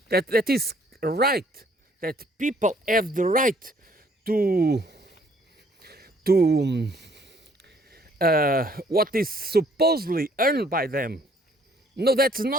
that is right, that people have the right to what is supposedly earned by them. No, that's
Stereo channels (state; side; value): normal; both; correlation 0.62